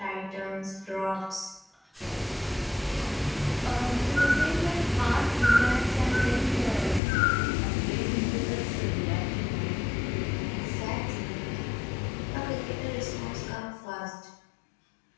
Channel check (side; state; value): right; drops out; at 7.0 s